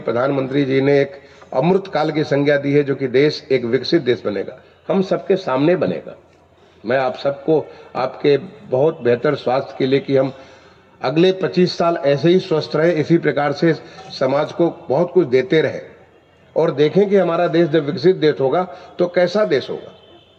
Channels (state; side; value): identical; both; correlation 1.00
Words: जी ने एक अमृत काल की संज्ञा दी है, जो कि देश एक विकसित देश बनेगा, हम सबके सामने बनेगा। मैं आप सबको आपके बहुत बेहतर स्वास्थ्य के लिए कि हम अगले 25 साल ऐसे ही स्वस्थ रहे, इसी प्रकार से समाज को बहुत कुछ देते रहे और देखें कि हमारा देश जब विकसित देश होगा तो कैसा देश होगा,